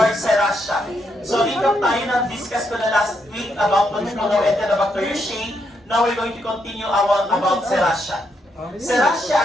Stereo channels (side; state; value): both; normal; correlation 0.78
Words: Serratia. So, recap tayo na discuss ko na last week about Pulmonary Enterobacteriaceae. Now we're going to continue about Serratia.